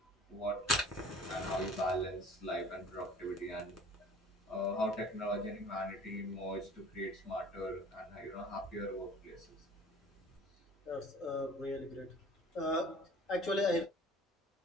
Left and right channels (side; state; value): both; normal; correlation 0.47